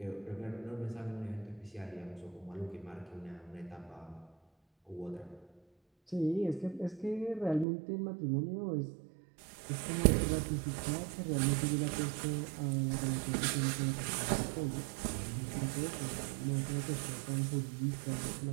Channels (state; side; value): drops out; left; at 7.7 s